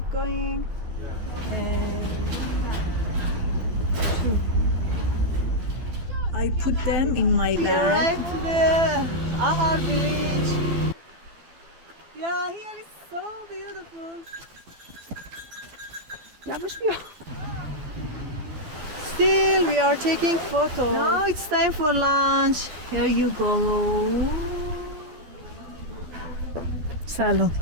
going? And I put them in my we bag. arrived to the Ahar village. Yeah, here is so beautiful. Still, we are taking photos. Now it's time for lunch. Here you go. Salon.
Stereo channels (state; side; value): late; left; 12 ms